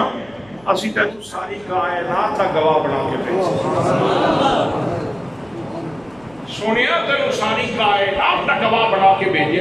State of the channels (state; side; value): noise; right; hum, 27 dB below the sound